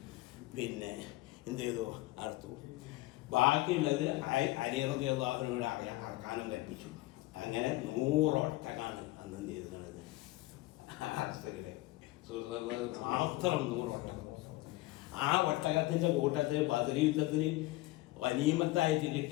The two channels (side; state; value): right; quieter; 18.7 dB